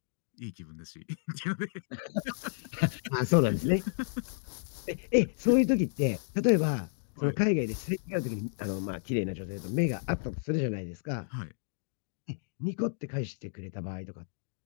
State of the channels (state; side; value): silent; right; digital silence